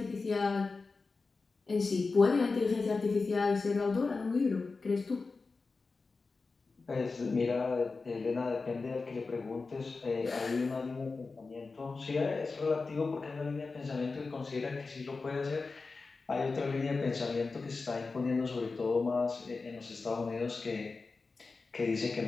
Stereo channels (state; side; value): quieter; right; 4.1 dB